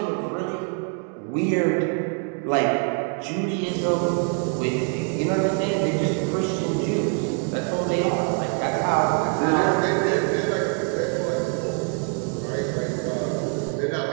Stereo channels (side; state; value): left; quieter; 37.5 dB